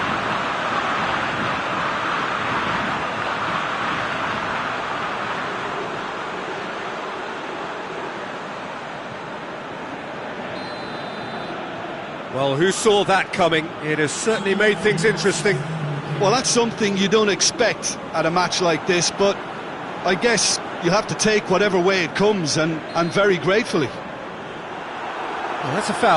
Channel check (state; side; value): identical; both; correlation 1.00